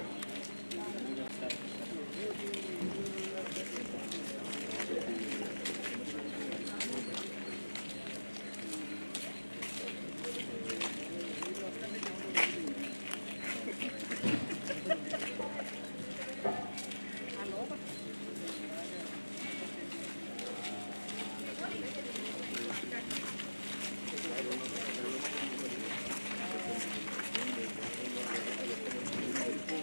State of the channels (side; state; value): both; inverted; correlation -1.00